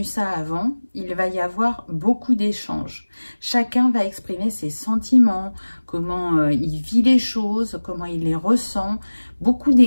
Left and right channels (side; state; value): both; inverted; correlation -1.00